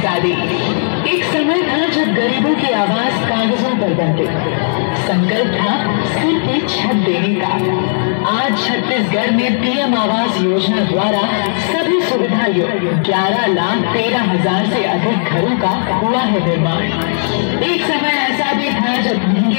एक समय था जब गरीबों की आवाज कागजों पर बनती। संकल्प था सिर पे छत देने का। आज छत्तीसगढ़ में पीएम आवास योजना द्वारा सभी सुविधा युक्त 11,13,000 से अधिक घरों का हुआ है निर्माण। एक समय ऐसा भी था जब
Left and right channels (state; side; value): silent; right; digital silence